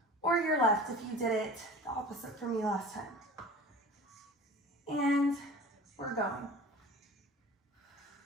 Or your left if you did it the opposite for me last time. And we're going.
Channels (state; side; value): normal; both; correlation 0.39